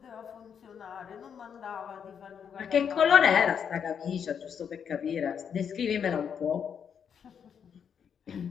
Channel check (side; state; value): right; quieter; 7.5 dB